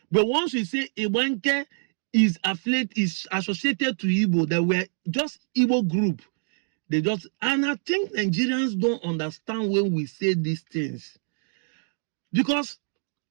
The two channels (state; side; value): silent; left; digital silence